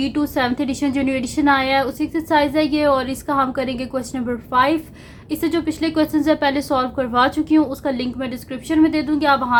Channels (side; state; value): both; identical; correlation 1.00